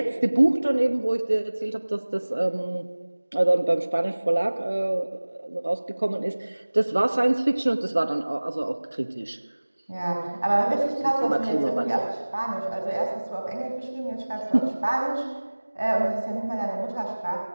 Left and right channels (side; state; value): both; inverted; correlation -1.00